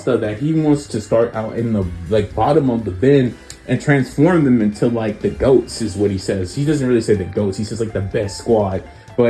that he wants to start out in the like bottom of the bin and transform them into like the goats, is what he says. He doesn't really say the goats, he says like the best squad.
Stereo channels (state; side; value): identical; both; correlation 1.00